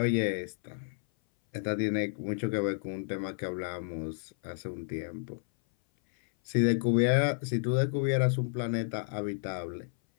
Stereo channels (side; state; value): right; silent; 57 dB below the other